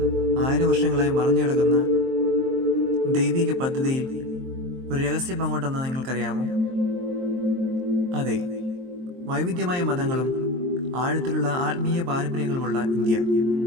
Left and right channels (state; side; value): late; left; 23 ms